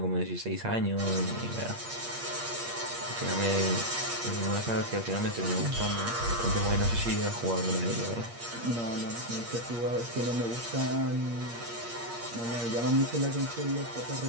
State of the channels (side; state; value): left; late; 8.6 ms